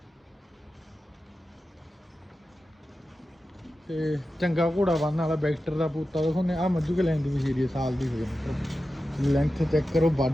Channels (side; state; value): both; normal; correlation 0.92